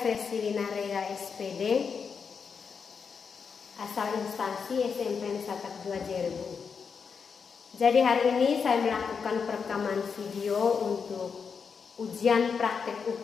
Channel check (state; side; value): quieter; right; 6.0 dB